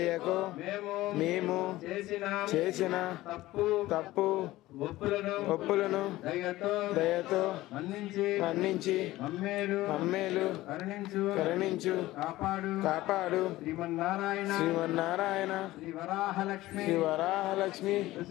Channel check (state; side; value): quieter; right; 17.1 dB